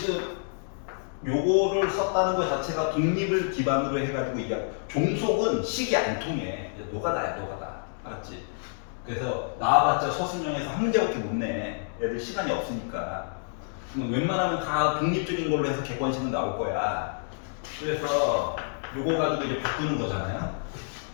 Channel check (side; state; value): right; silent; digital silence